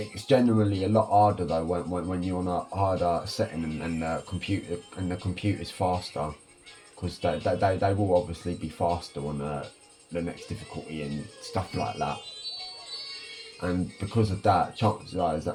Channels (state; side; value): identical; both; correlation 1.00